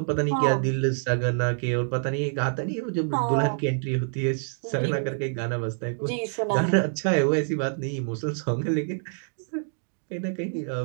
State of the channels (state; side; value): silent; left; digital silence